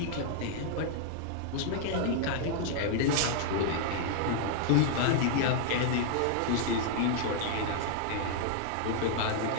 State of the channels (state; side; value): different; both; correlation -0.01